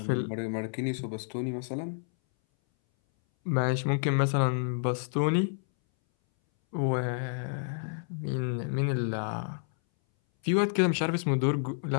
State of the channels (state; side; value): silent; right; 58 dB below the other